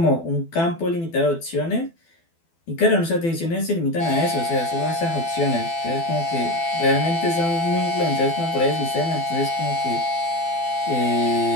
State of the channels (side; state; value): right; late; 12 ms